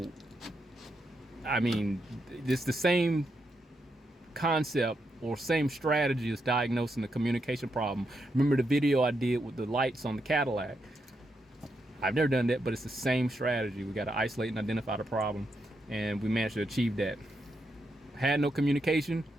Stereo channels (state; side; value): normal; both; correlation 0.82